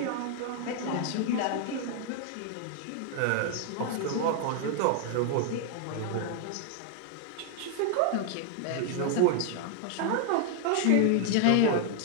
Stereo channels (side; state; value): both; different; correlation 0.00